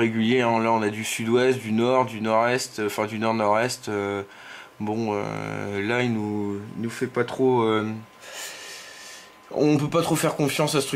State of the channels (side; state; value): both; identical; correlation 1.00